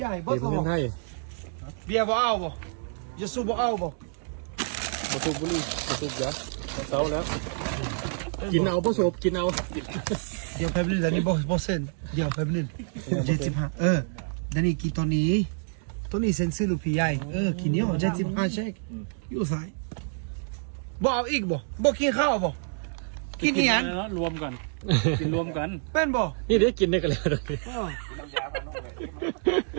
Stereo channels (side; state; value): left; silent; 60 dB below the other